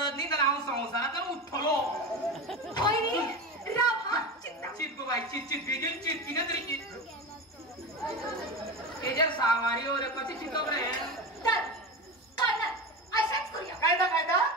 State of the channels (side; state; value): both; normal; correlation 0.24